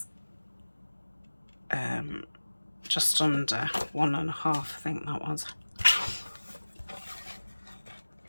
Just under 1.5, I think that was.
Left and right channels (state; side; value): inverted; both; correlation -1.00